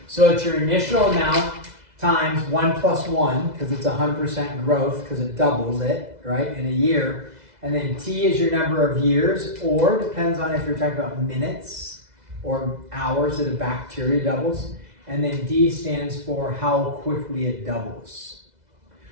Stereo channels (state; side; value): late; left; 2.0 ms